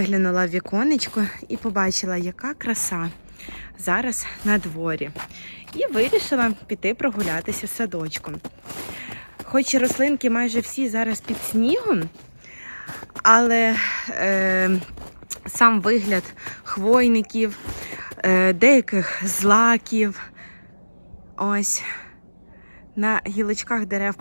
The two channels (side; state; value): both; inverted; correlation -1.00